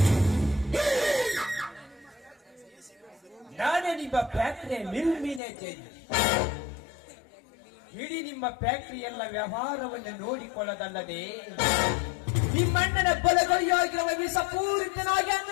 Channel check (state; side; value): drops out; right; at 5.4 s